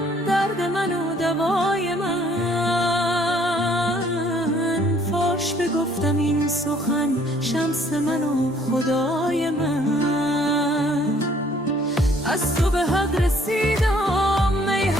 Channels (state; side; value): normal; both; correlation 0.61